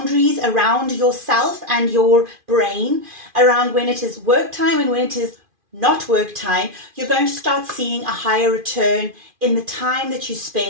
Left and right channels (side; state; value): left; late; 2.4 ms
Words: around yourself and your brain, around when it is work time and when it is not work time, you're going to start seeing a higher return in the time that you